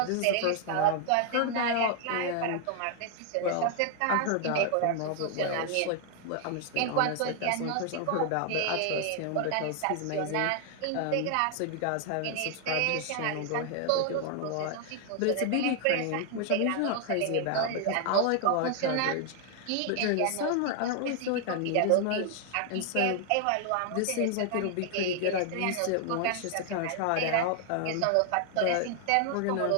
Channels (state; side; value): different; both; correlation 0.00